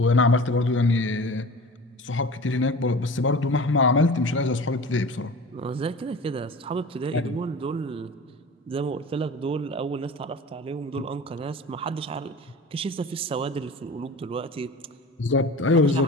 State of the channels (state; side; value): normal; both; correlation 0.37